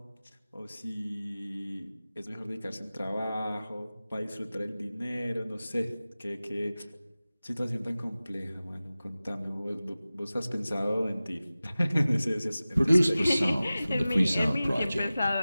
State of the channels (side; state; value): both; inverted; correlation -0.97